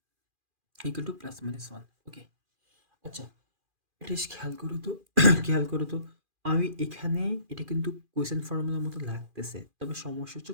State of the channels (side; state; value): left; late; 2.4 ms